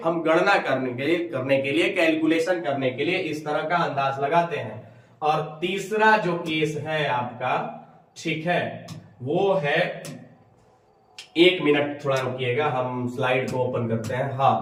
हम गणना करने के लिए कैलकुलेशन करने के लिए इस तरह का अंदाज लगाते हैं। और तीसरा जो केस है आपका, ठीक है, वो है, 1 मिनट थोड़ा रुकिएगा, हम स्लाइड को ओपन करते हैं।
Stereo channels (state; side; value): identical; both; correlation 1.00